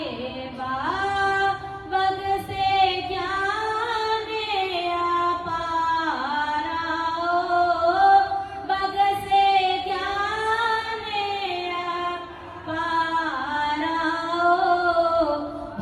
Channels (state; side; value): identical; both; correlation 1.00